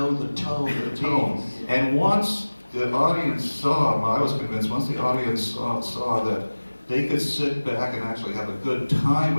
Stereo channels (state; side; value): inverted; both; correlation -1.00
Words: the tone of the Tone. And once the audience saw, I was convinced, once the audience saw that they could sit back and actually have a good time